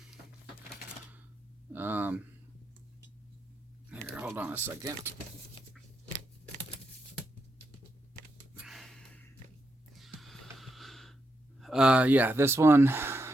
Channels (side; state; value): both; normal; correlation 0.83